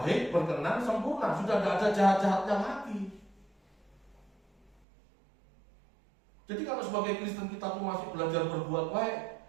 berkenan, sempurna, sudah tidak ada jahat-jahatnya lagi. Jadi kalau sebagai Kristen kita tuh masih belajar berbuat baik,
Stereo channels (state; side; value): drops out; left; at 4.8 s